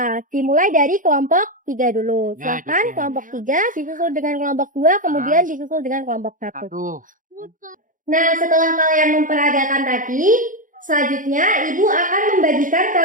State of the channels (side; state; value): left; late; 0.38 ms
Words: Dimulai dari kelompok 3 dulu. Ya, Silakan gitu ya. kelompok 3 disusul dengan kelompok 2, kemudian disusul dengan kelompok 1. Nah, setelah kalian memperagakan tadi, selanjutnya Ibu akan membagikan